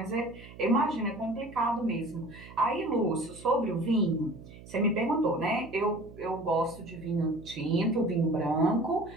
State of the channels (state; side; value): noise; right; hum, 18 dB below the sound